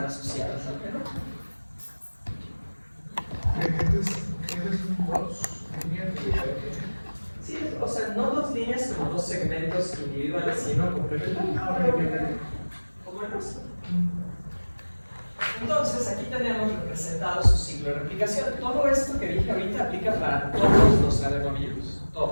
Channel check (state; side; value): inverted; both; correlation -1.00